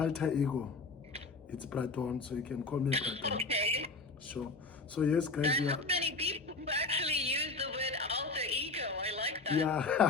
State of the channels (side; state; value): right; quieter; 3.8 dB